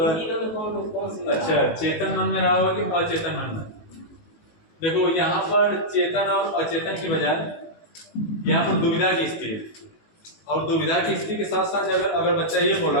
तीनों में कौन सी, अच्छा, चेतन मन में रहा होगा कि अचेतन मन में। देखो यहाँ पर चेतन और अचेतन की बजाय यहाँ पर दुविधा की स्थिति है, और दुविधा की स्थिति के साथ साथ अगर बच्चा ये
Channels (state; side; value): late; right; 19 ms